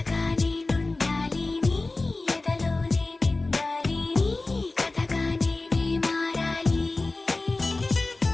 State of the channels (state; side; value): quieter; right; 3.2 dB